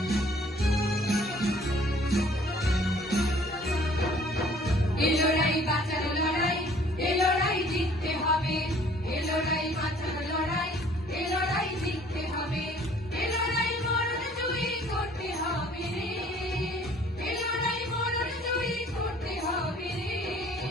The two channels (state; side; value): normal; both; correlation 0.56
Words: এই লড়াই বাঁচার লড়াই, এই লড়াই জিততে হবে। এই লড়াই বাঁচার লড়াই, এই লড়াই জিততে হবে। এই লড়াই মরণ জয়ী করতে হবে রে, এই লড়াই মরণ জয়ী করতে হবে রে।